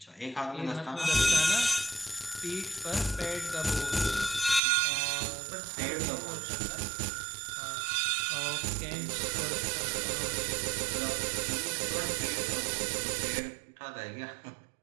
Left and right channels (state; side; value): drops out; left; at 4.6 s